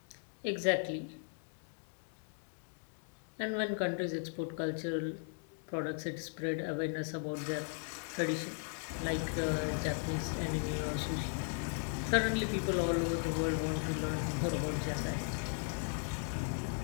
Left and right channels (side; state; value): right; silent; 53 dB below the other